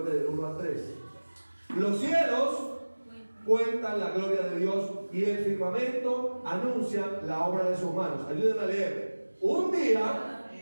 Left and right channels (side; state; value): both; inverted; correlation -1.00